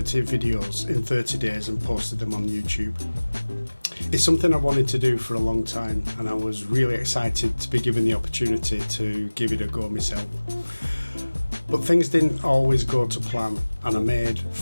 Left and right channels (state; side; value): inverted; both; correlation -1.00